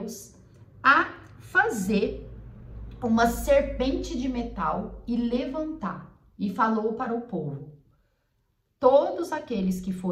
a fazer uma serpente de metal e levantar. E falou para o povo, todos aqueles que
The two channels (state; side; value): identical; both; correlation 1.00